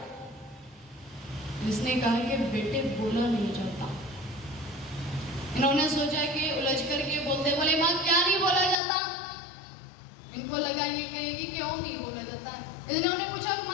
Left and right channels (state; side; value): drops out; right; at 8.8 s